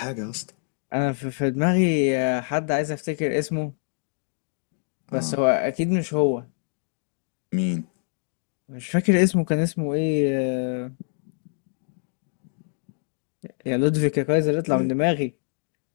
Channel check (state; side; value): silent; right; 60 dB below the other